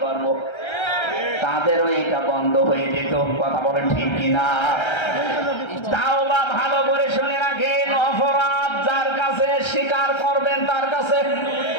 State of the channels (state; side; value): late; right; 1.3 ms